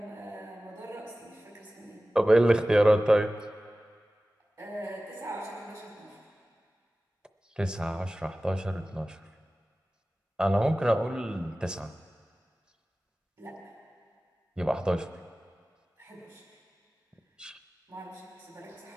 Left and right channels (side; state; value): both; normal; correlation 0.96